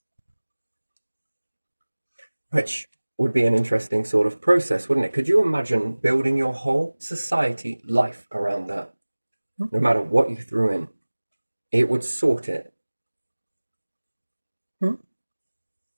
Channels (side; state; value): both; inverted; correlation -1.00